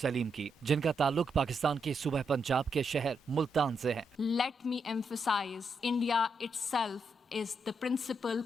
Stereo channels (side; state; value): both; normal; correlation 0.81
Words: की, जिनका ताल्लुक पाकिस्तान के सूबे पंजाब के शहर मुल्तान से है। Let me emphasize, India itself is the principal